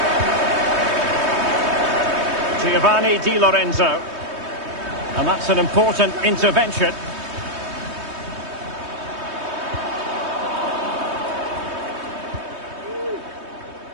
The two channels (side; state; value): left; late; 3.2 ms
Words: Giovanni Di Lorenzo. And that's an important intervention.